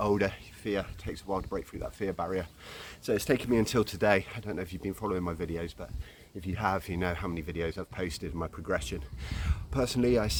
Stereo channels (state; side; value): identical; both; correlation 1.00